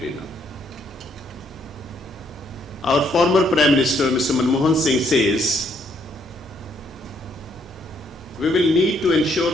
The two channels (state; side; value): normal; both; correlation 0.71